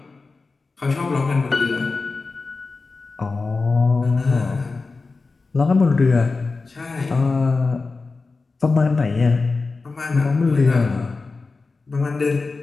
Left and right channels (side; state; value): right; quieter; 4.0 dB